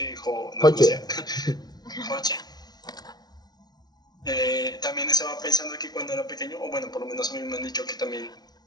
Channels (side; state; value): right; late; 0.19 ms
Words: también estaba pensando que cuando era pequeño, o bueno, por lo menos a mí me han dicho que también